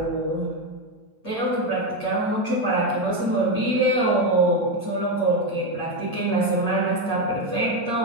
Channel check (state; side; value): late; right; 8.6 ms